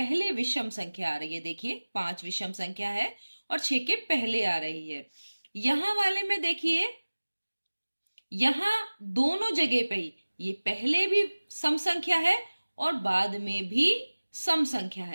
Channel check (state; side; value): inverted; both; correlation -1.00